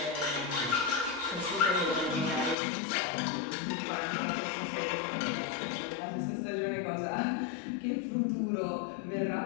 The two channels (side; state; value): right; drops out; at 2.6 s